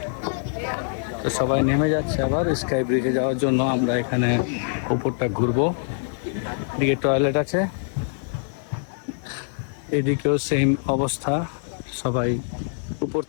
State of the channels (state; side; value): silent; right; 62 dB below the other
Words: তো সবাই নেমে যাচ্ছে আবার স্কাই ব্রিজে যাওয়ার জন্য। আমরা এখানে উপরটা ঘুরবো, এদিকে টয়লেট আছে, এদিকেও সেম অবস্থা। সবাই উপর